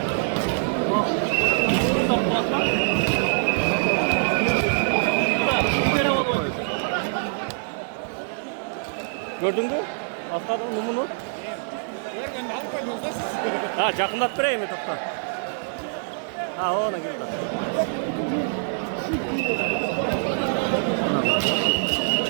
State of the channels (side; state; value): left; silent; digital silence